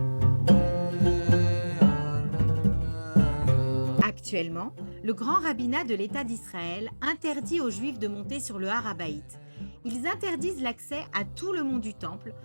Actuellement, le grand rabbinat de l'État d'Israël interdit aux Juifs de monter sur le Har HaBayit. Ils interdisent l'accès à tout le mont du Temple,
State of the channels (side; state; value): both; inverted; correlation -1.00